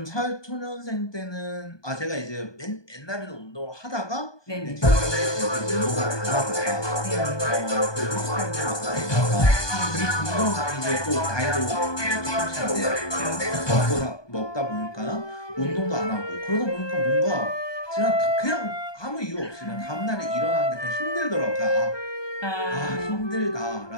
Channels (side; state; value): right; late; 1.2 ms